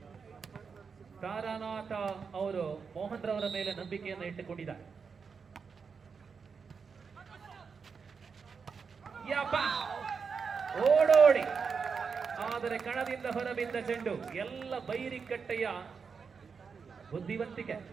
ತಾರಾನಾಥ ಅವರು ಮೋಹನ್ ರವರ ಮೇಲೆ ನಂಬಿಕೆಯನ್ನು ಇಟ್ಟುಕೊಂಡಿದ್ದಾರೆ. ಓಡೋಡಿ ಆದರೆ ಕಣದಿಂದ ಹೊರಬಿದ್ದ ಚೆಂಡು. ಎಲ್ಲ ಬೈರಿಕಟ್ಟೆಯ ಬುದ್ಧಿವಂತಿಕೆ.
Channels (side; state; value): left; quieter; 5.7 dB